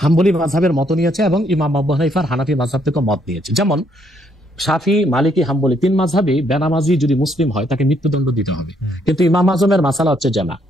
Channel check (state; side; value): normal; both; correlation 0.71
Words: হাম্বলি মাযহাবের মত নিয়েছে এবং ইমাম আবু হানিফার হানাফি মাযহাব থেকে মত নিয়েছে। যেমন শাফি, মালিকি, হাম্বলি তিন মাযহাবই বেনামাজি যদি মুসলিম হয় তাকে মৃত্যুদণ্ড দিতে হবে। কিন্তু ইমাম আজমের মাসালা হচ্ছে যে না,